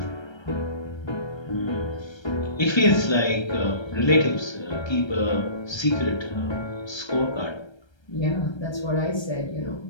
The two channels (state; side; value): late; right; 1.3 ms